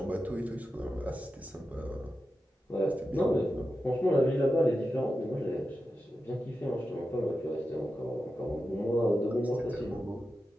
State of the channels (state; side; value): normal; both; correlation 0.91